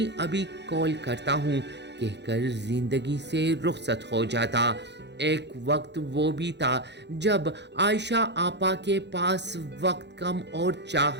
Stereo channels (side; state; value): left; late; 0.50 ms